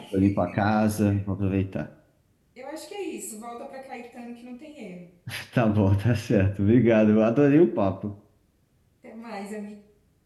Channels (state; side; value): identical; both; correlation 1.00